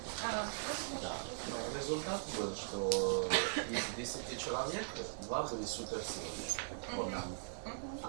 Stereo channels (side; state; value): left; silent; digital silence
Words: да. Но результат был, что из 10 человек 2 были суперсильные,